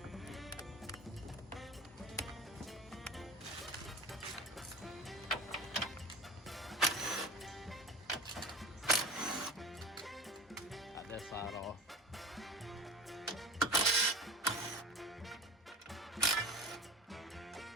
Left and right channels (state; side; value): normal; both; correlation 0.34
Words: Got that side off.